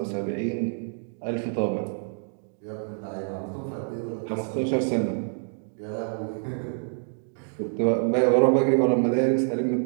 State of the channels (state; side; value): silent; left; digital silence